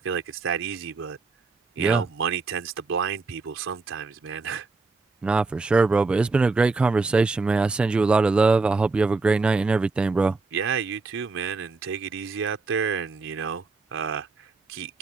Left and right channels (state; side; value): quieter; left; 3.9 dB